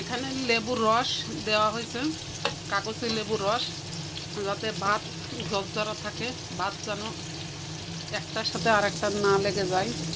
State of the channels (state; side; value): identical; both; correlation 1.00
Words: লেবুর রস দেওয়া হয়েছে, কাগজে লেবুর রস, যাতে ভাত ঝরঝরা থাকে, ভাত যেন একটার সাথে আর একটা না লেগে যায়।